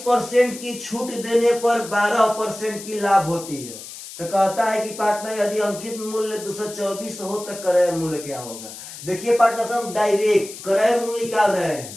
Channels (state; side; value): noise; left; hiss, 13 dB below the sound